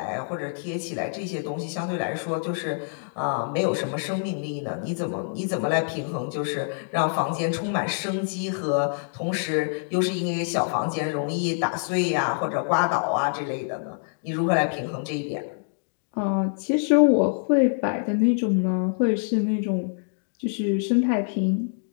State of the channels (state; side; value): silent; right; digital silence